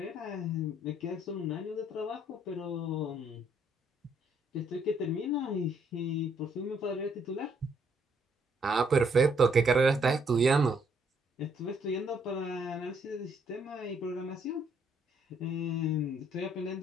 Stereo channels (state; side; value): normal; both; correlation 0.69